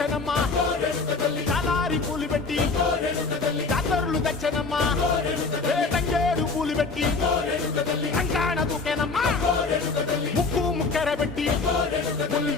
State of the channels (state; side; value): quieter; right; 4.1 dB